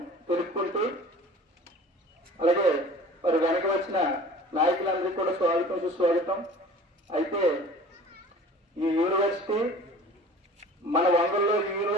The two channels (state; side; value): normal; both; correlation 0.44